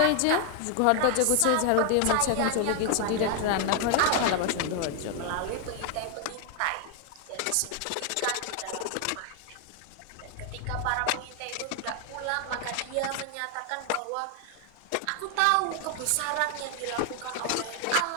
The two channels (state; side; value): different; both; correlation 0.00